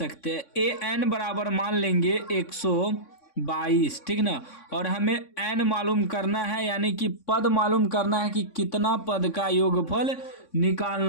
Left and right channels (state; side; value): late; right; 3.6 ms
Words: हैं। an बराबर मान लेंगे 122, ठीक ना। और हमें n मालूम करना है, यानी कि पद मालूम करना है कि कितना पद का योगफल